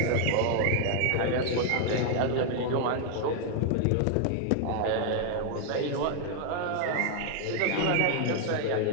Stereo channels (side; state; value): both; different; correlation 0.00